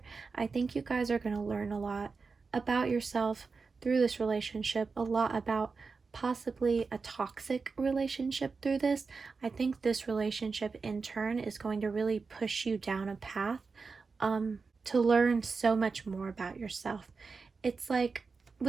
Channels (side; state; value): left; quieter; 4.6 dB